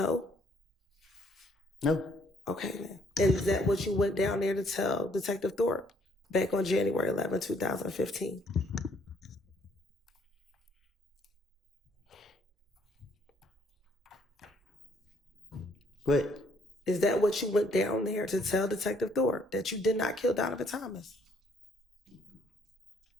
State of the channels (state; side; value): normal; both; correlation 0.66